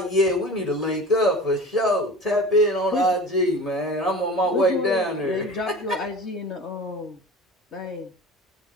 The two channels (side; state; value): both; normal; correlation 0.37